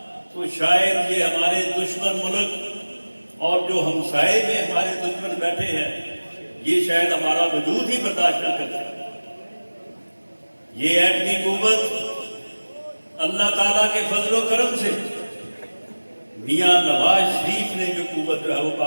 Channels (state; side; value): inverted; both; correlation -1.00